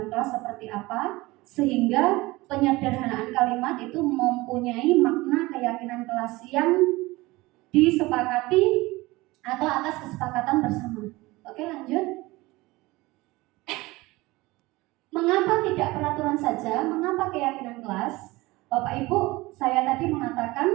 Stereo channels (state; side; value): quieter; left; 20.9 dB